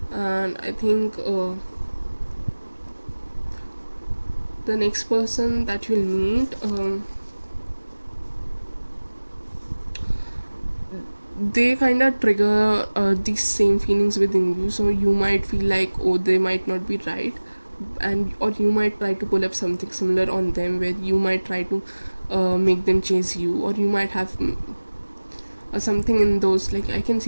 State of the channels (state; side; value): inverted; both; correlation -1.00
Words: and I think the next person that you'll meet, they kind of trigger these same feelings within you, so you might feel like, oh, they might not be right, and or you might try to pull up something similar on them, where you might try to make them chase you, or you might have something in those, like I can